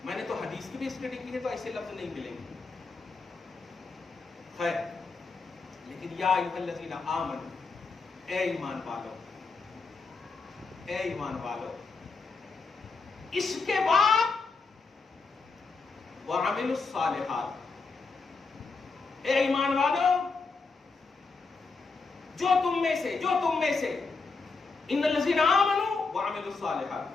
میں نے تو حدیث کی بھی اسٹڈی کی ہے تو ایسے لفظ نہیں ملیں گے۔ خیر، لیکن یا ایھا الذین آمنوا، اے ایمان والو، اے ایمان والو، اس کے بعد وعملوا الصالحات، اے ایمان والو، جو تم میں سے ان الذین آمنوا وعملوا الصالحات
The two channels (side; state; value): right; quieter; 4.2 dB